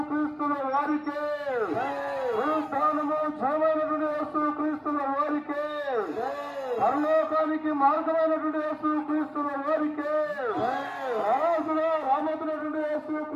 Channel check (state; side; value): identical; both; correlation 1.00